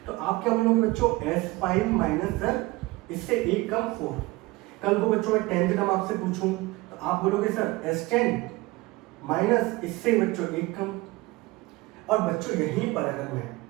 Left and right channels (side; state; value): left; quieter; 20.9 dB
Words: तो आप क्या बोलोगे बच्चों, S5 माइनस सर इससे एक कम 4। कल को बच्चों मैं 10th टर्म आपसे पूछूं तो आप बोलोगे सर S10 माइनस इससे बच्चों एक कम। और बच्चों यहीं पर